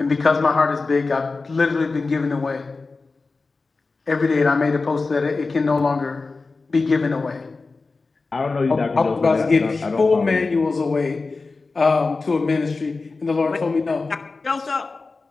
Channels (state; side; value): quieter; right; 3.9 dB